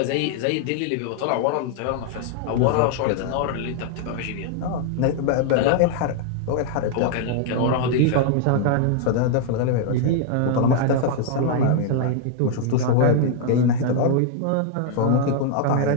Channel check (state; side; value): different; both; correlation 0.00